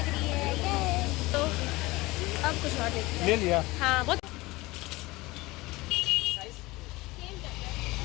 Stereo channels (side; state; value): right; quieter; 21.1 dB